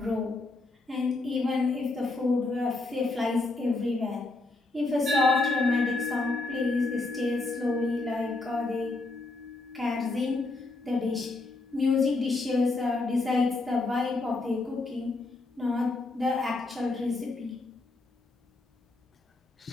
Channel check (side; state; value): right; quieter; 3.3 dB